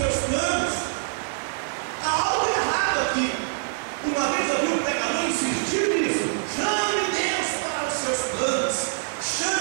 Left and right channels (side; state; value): left; silent; digital silence